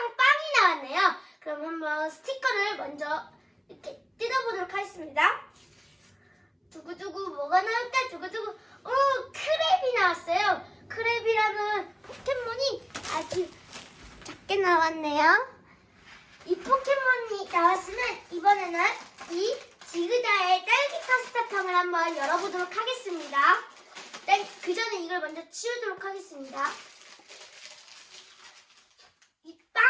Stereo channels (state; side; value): identical; both; correlation 1.00